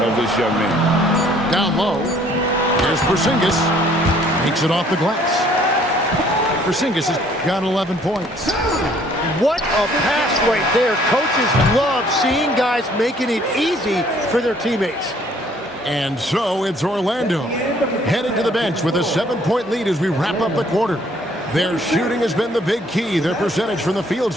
of this young man. Down low. There's Porzingis. Takes it off the glass. Porzingis has got 11 points. What a pass right there. Coaches love seeing guys making it easy for their teammates. And so it's Orlando headed to the bench with a 7-point lead as we wrap up the quarter. Their shooting has been the big key. Their percentage from the field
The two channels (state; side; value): normal; both; correlation 0.60